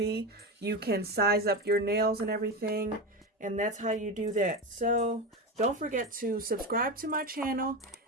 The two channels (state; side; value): normal; both; correlation 0.19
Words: You can size up your nails and everything, and that's how you do that. So don't forget to subscribe to my channel.